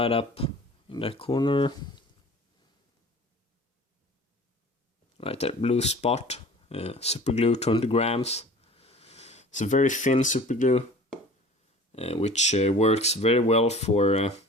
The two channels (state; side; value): normal; both; correlation 0.43